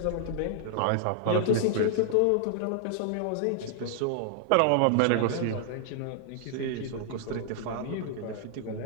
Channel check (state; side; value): different; both; correlation -0.01